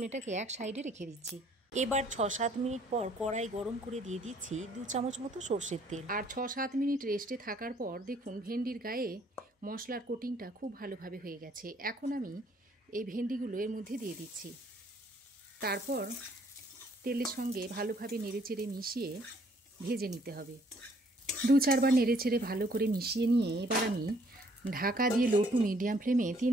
এটাকে এক সাইডে রেখে দিচ্ছি। এবার 6-7 মিনিট পর কড়াই গরম করে দিয়ে দিচ্ছি 2 চামচ মতো সর্ষের তেল। আর 6-7 মিনিট রেস্টে থাকার পর দেখুন ভেন্ডির গায়ে মশলার কোটিংটা খুব ভালোভাবে হয়ে গেছে। এখন আমি এই ভেন্ডিগুলো এর মধ্যে দিয়ে দিচ্ছি। তারপর তেলের সঙ্গে ভালোভাবে নেড়েচেড়ে মিশিয়ে ভেজে নিতে হবে। 2-4 বার নেড়েচেড়ে ভালো করে মিশিয়ে নিয়ে এবার আমি ঢাকা দিয়ে লো টু মিডিয়াম ফ্লেমে 3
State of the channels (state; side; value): normal; both; correlation 0.63